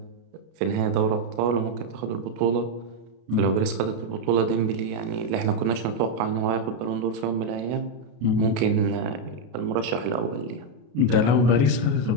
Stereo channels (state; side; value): late; left; 33 ms